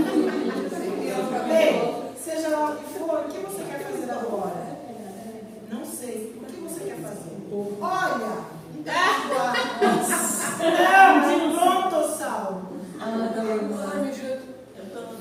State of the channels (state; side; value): identical; both; correlation 1.00